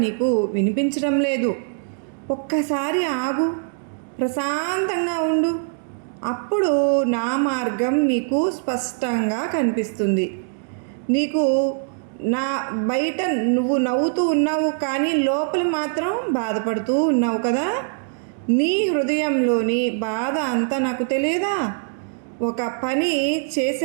నీకు వినిపించడం లేదు. ఒక్కసారి ఆగు, ప్రశాంతంగా ఉండు. అప్పుడు నా మార్గం నీకు స్పష్టంగా కనిపిస్తుంది. నీకు నా బయట నువ్వు నవ్వుతూ ఉన్నావు, కానీ లోపల మాత్రం బాధపడుతూ ఉన్నావు కదా. నీ హృదయంలోని బాధ అంతా నాకు తెలియదా? ఒక పని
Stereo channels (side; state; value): left; silent; digital silence